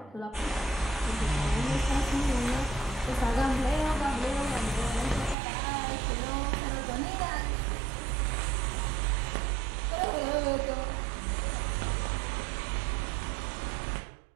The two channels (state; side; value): drops out; left; at 5.4 s